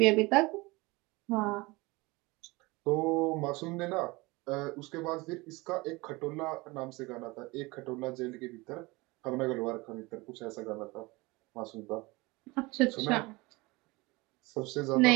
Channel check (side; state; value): left; quieter; 23.4 dB